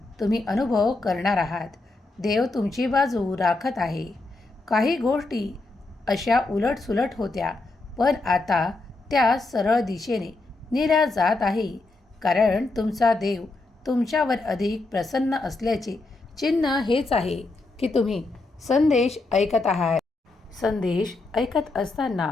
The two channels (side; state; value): right; quieter; 3.3 dB